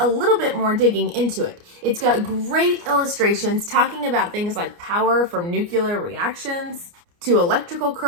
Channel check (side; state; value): left; late; 29 ms